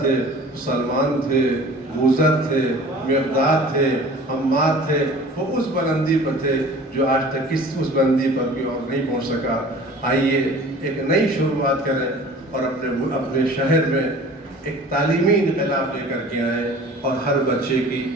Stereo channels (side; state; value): both; normal; correlation 0.45